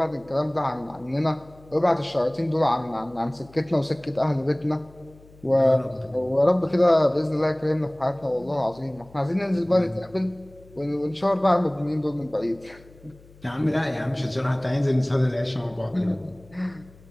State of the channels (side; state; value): left; noise; hum, 25 dB below the sound